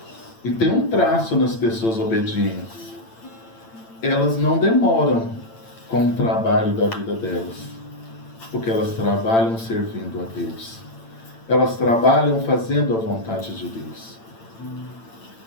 E tem um traço nas pessoas obedientes. Elas não demoram com o trabalho da vida delas, porque elas trabalham servindo a Deus. Elas trabalham fazendo a vontade de Deus.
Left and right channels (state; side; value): late; right; 8.9 ms